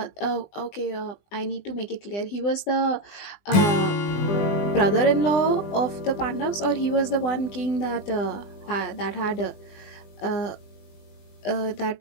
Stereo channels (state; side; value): late; right; 20 ms